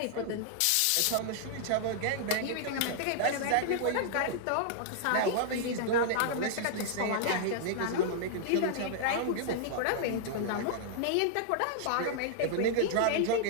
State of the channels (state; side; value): different; both; correlation -0.01